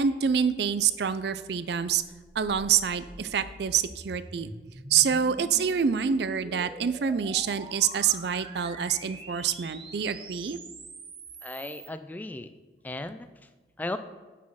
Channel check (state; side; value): quieter; left; 6.6 dB